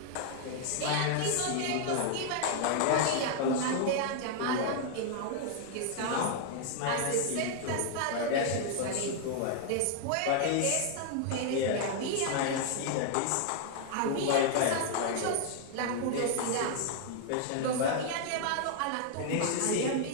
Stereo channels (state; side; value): different; both; correlation 0.00